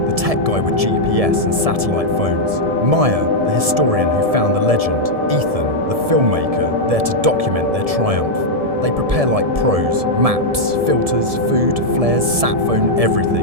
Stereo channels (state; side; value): late; left; 1.7 ms